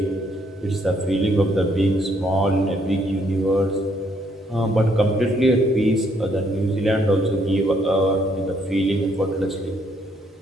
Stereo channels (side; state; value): both; normal; correlation 0.70